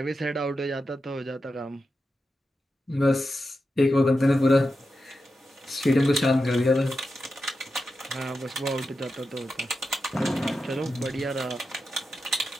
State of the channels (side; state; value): both; normal; correlation 0.89